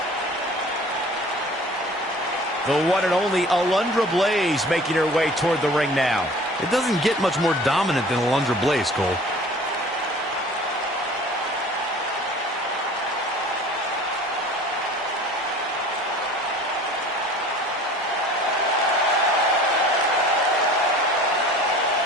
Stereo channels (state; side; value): normal; both; correlation 0.46